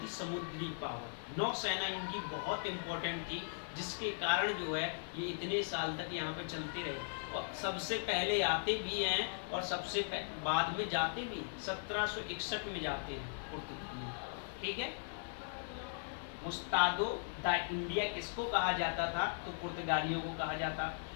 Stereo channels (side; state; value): right; silent; digital silence